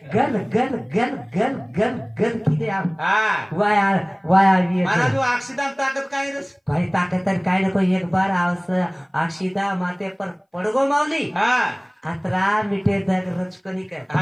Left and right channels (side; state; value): both; identical; correlation 1.00